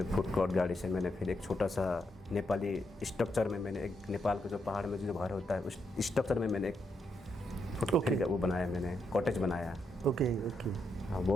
फूड कोर्ट गाड़ी से मैंने फिर एक छोटा सा नेपाली स्ट्रक्चर में मैंने एक नेपाल का जो पहाड़ में जो घर होता है उस स्ट्रक्चर में मैंने एक फिर वो बनाया, मैंने कॉटेज बनाया। ओके। हाँ,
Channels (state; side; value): normal; both; correlation 0.80